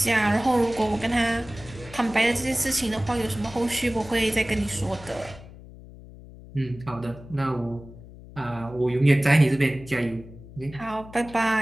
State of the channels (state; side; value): noise; left; hum, 18 dB below the sound